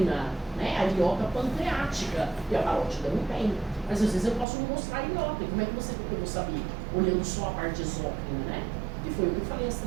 né? A ilhoca pancreática, e a parótida não tem. Mas às vezes eu posso não mostrar a ilhoca. Como é que eu vou saber? Olhando só a parte exócrina, né? Que foi o que eu falei, as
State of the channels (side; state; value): left; drops out; at 4.5 s